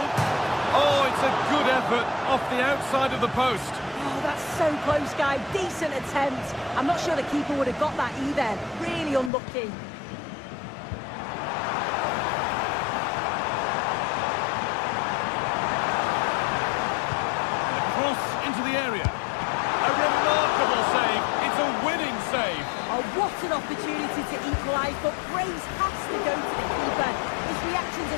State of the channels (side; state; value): right; drops out; at 9.3 s